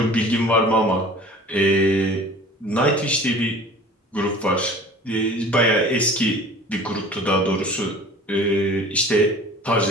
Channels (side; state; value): both; normal; correlation 0.44